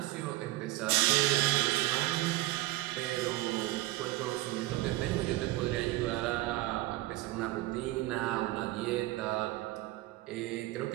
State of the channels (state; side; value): quieter; left; 17.9 dB